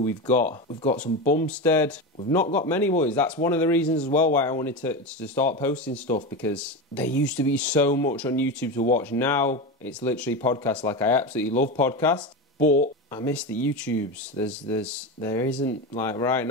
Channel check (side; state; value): both; normal; correlation 0.20